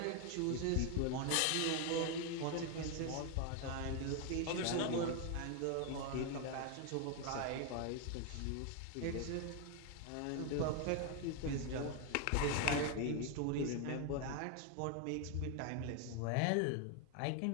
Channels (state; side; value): different; both; correlation 0.01